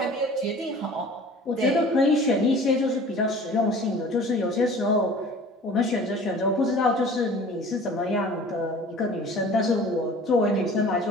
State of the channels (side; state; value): both; normal; correlation 0.45